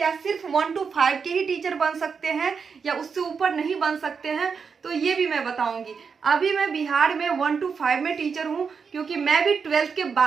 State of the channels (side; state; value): left; quieter; 5.8 dB